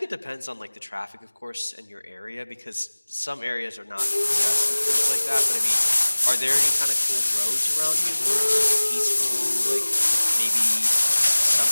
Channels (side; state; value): both; inverted; correlation -1.00